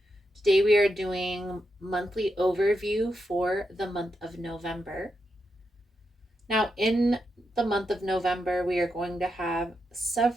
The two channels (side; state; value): both; normal; correlation 0.85